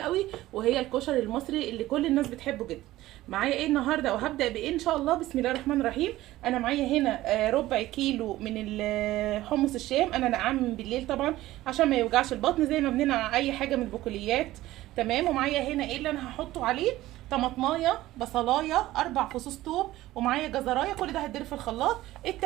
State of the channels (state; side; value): quieter; left; 16.2 dB